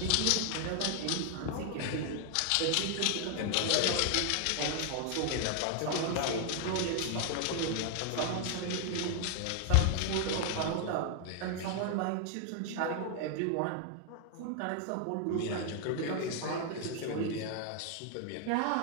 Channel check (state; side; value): different; both; correlation 0.00